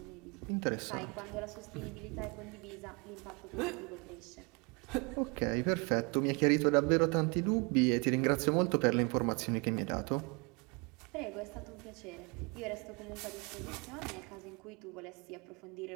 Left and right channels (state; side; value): quieter; left; 30.7 dB